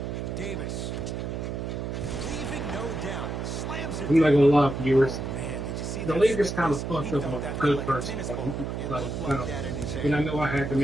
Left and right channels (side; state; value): right; noise; hum, 4 dB below the sound